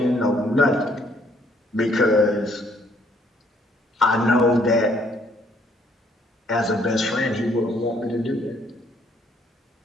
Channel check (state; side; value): normal; both; correlation 0.65